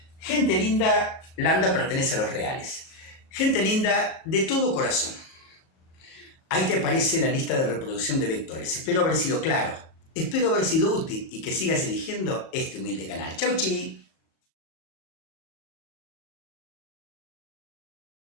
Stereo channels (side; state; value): right; late; 38 ms